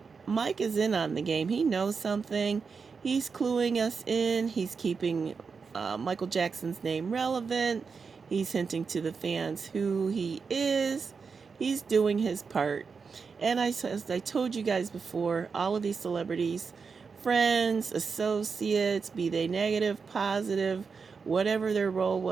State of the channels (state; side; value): quieter; left; 5.3 dB